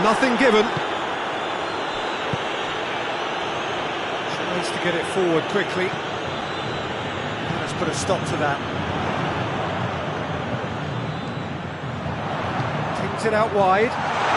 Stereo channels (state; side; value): identical; both; correlation 1.00